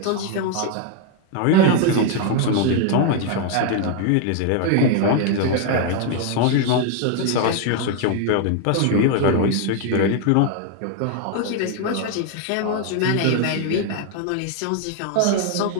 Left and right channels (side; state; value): both; different; correlation 0.00